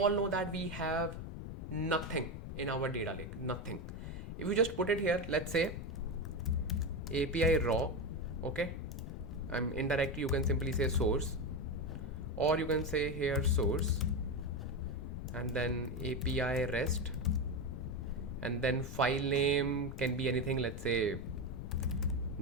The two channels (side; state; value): left; noise; rumble, 8 dB below the sound